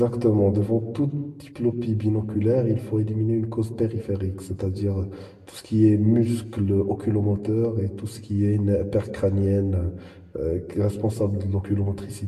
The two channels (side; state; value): both; identical; correlation 1.00